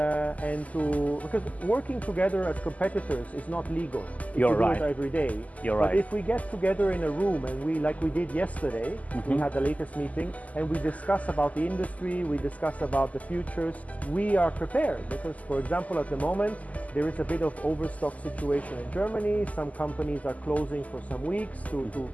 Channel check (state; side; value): late; right; 0.074 ms